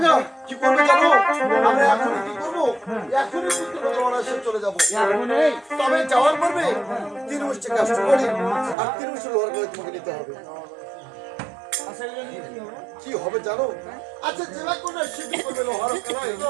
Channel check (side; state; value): left; drops out; at 8.8 s